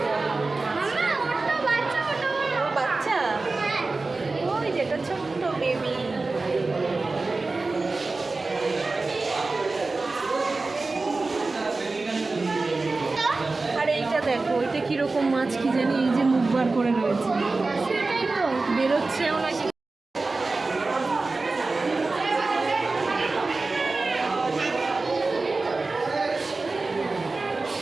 বাচ্চা, ওই যেটা ছোট্ট বেবি। আর এইটা দেখো, ওইটা কিরকম মাছ কি জানি, এই যে মুখ বার করে রয়েছে, বেরোচ্ছেও নাকি।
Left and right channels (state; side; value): quieter; left; 3.6 dB